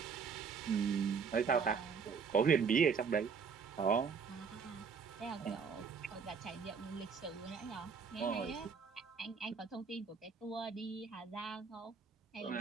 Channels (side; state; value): left; quieter; 5.8 dB